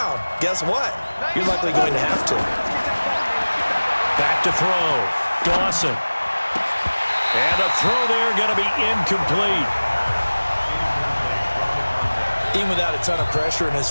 guess what? You're likely going to have to. Back to throw. Dawson. And the throw there going to be incomplete. Even without a ton of pressure in his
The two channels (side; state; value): both; inverted; correlation -1.00